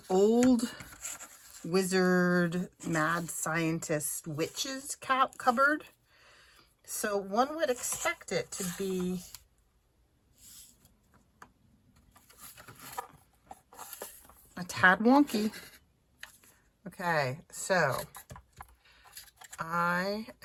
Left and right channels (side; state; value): both; identical; correlation 1.00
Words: old wizard, mad scientist, witches cupboard. So one would expect it to be a tad wonky. Okay, so I